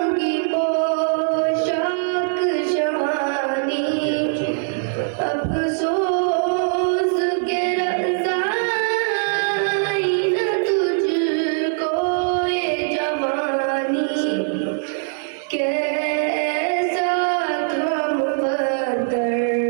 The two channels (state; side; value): silent; left; 65 dB below the other